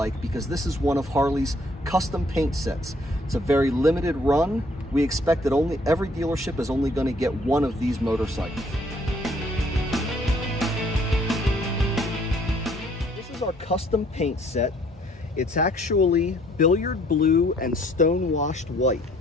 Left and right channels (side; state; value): both; normal; correlation 0.62